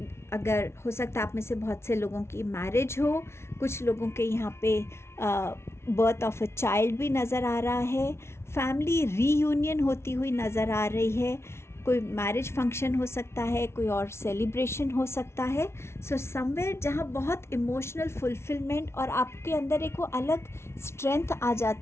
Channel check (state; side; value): late; right; 0.13 ms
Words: हो सकता है आप में से बहुत से लोगों की मैरिज हो, कुछ लोगों के यहाँ पे बर्थ ऑफ अ चाइल्ड भी नज़र आ रहा है, फैमिली रीयूनियन होती हुई नज़र आ रही है, कोई मैरिज फंक्शन हो सकता है, कोई और सेलिब्रेशन हो सकता है। सो समवेयर जहाँ बहुत इमोशनल फुलफिलमेंट और आपके अंदर एक वो अलग स्ट्रेंथ आ